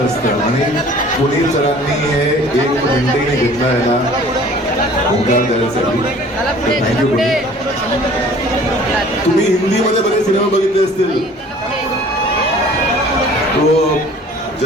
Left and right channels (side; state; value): both; normal; correlation 0.49